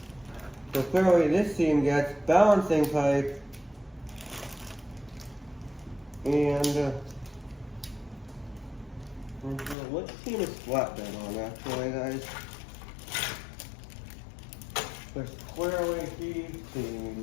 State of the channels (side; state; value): right; drops out; at 9.8 s